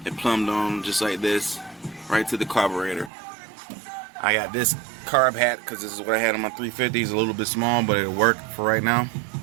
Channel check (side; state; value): left; drops out; at 3.1 s